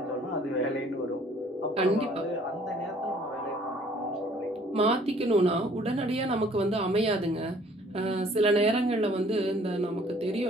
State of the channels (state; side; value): normal; both; correlation 0.57